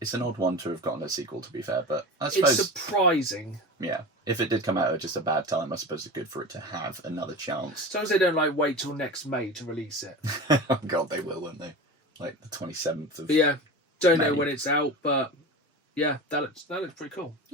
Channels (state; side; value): normal; both; correlation 0.30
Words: an odd one to have gotten a sequel, to be fair. But I suppose, it's surprising. yeah, if it did come out at just a bad time, I suppose it's good for it to have another chance. As long as they don't like wait till next May to release it. Oh God, they will, won't they? Like the 27th of. But yeah, don't know May. when it's out, but yeah, that looks pretty cool.